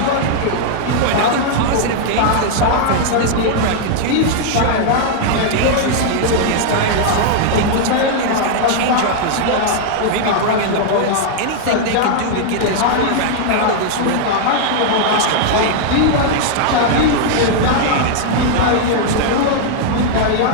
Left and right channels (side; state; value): both; different; correlation 0.00